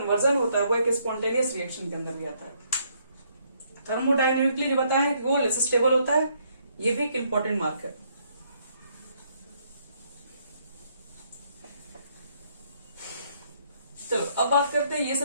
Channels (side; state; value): both; inverted; correlation -0.70